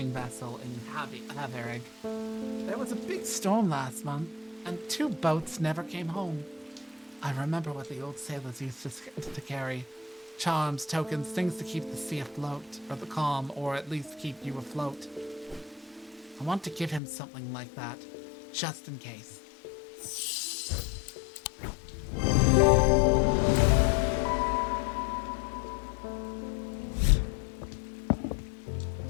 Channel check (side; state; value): right; drops out; at 17.0 s